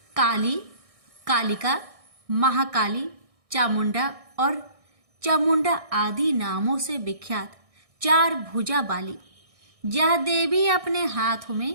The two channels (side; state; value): left; late; 1.6 ms